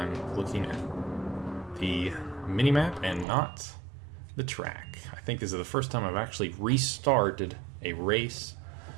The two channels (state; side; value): drops out; left; at 3.2 s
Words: looking at the minimap and not the track. I think this is the first time I've actually restarted a race